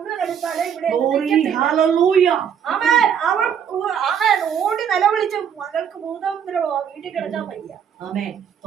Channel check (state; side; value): quieter; left; 8.1 dB